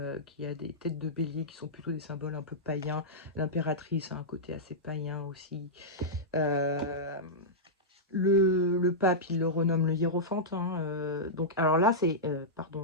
qui a des têtes de bélier qui sont plutôt des symboles un peu païens. L'impératrice a un côté assez païen aussi. Le pape, il le renomme le hiérophante. Hein, donc, alors là, c'est...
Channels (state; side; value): normal; both; correlation -0.11